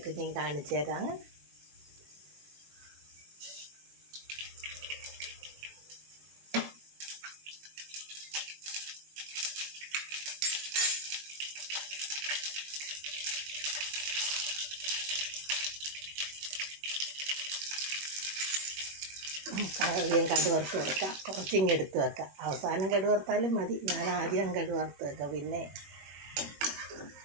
ഞാൻ കാണിച്ചു തരാം. ആദ്യം കടുവറുത്ത് വെക്കാം, കുറച്ചിങ്ങ് എടുത്ത് വെക്കാം. അവസാനം കടുവറുത്താലും മതി. ഞാൻ ആദ്യം കടുവറുത്ത് വെക്കാം. പിന്നെ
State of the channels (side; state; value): left; late; 21 ms